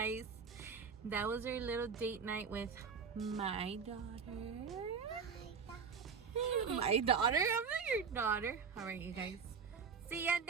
That was our little date night with my daughter. My daughter? I'm not your daughter. All right, you guys. See ya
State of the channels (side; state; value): left; quieter; 5.9 dB